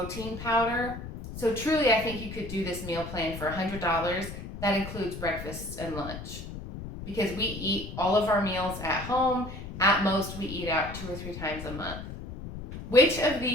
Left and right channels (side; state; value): left; noise; rumble, 10 dB below the sound